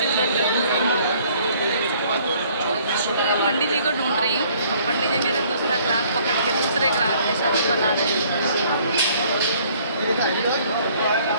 उधर पंडित जी को ढूंढ रही हूँ। पंडित जी मेरे दूसरा ग्राहक पकड़ के दूसरे ग्राहक के साथ बना रहे हैं,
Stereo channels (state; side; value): inverted; both; correlation -0.60